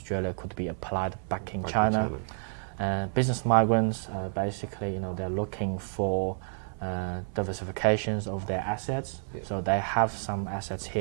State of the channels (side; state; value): left; silent; 58 dB below the other